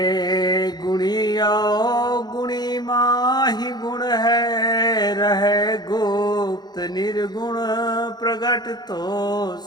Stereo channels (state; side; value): late; right; 0.20 ms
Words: गुणिया गुणी माहि गुण है, रहे गुप्त निर्गुण प्रगट तो